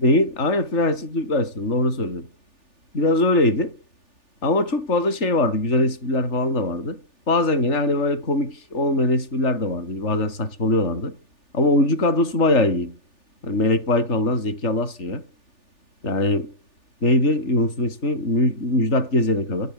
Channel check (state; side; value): late; right; 3.4 ms